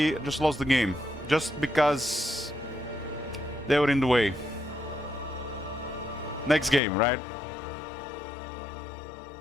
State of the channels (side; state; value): right; drops out; at 6.8 s